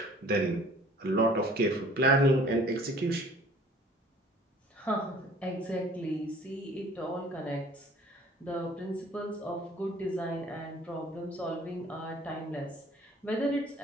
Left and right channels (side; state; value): both; normal; correlation 0.52